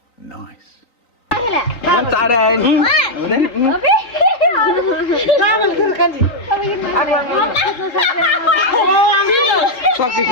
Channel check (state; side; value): late; right; 3.9 ms